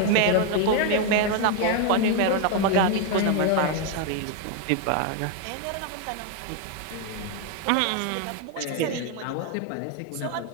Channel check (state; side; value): different; both; correlation 0.01